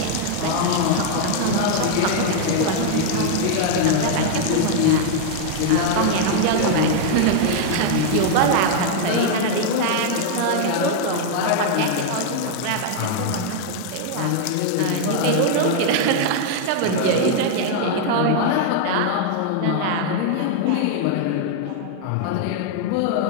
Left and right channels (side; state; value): both; different; correlation 0.00